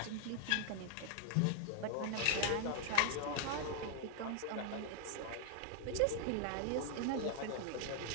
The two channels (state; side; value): different; both; correlation 0.00